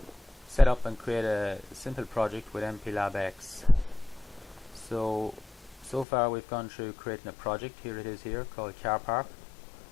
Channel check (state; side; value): drops out; right; at 6.1 s